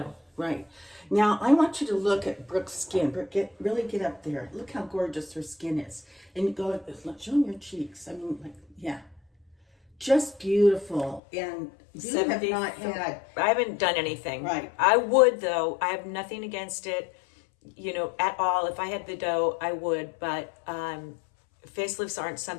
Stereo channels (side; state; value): right; drops out; at 11.2 s